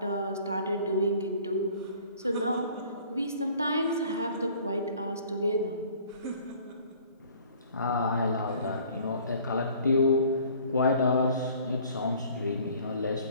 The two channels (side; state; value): both; inverted; correlation -0.53